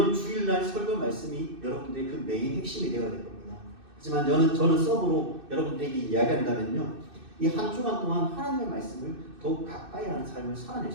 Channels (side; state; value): left; late; 2.6 ms